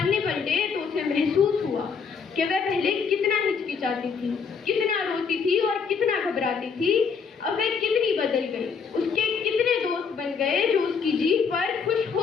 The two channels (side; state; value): right; quieter; 5.9 dB